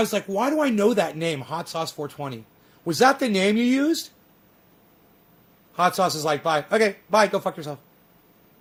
was like, why do I know that name, Hot Sauce 420? Was that the name you used? Hot Sauce is like, bye. Okay, bye. Go fuck yourself.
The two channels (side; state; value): both; identical; correlation 1.00